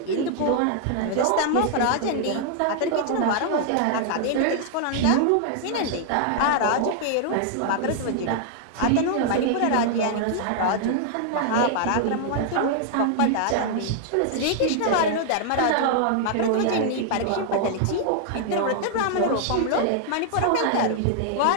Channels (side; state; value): both; different; correlation -0.01